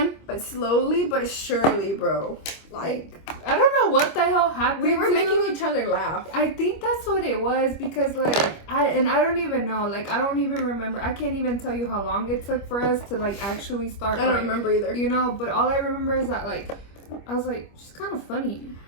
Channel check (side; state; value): right; late; 25 ms